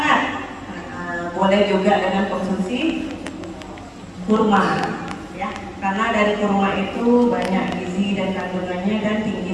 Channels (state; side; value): identical; both; correlation 1.00